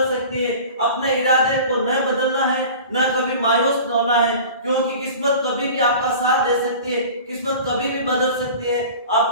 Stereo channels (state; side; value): inverted; both; correlation -0.39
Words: सकती है। अपने इरादे को न बदलना है, न कभी मायूस न होना है, क्योंकि किस्मत कभी भी आपका साथ दे सकती है, किस्मत कभी भी बदल सकती है,